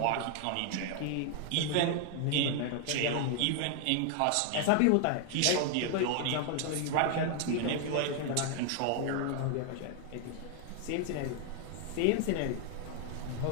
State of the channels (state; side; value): different; both; correlation 0.00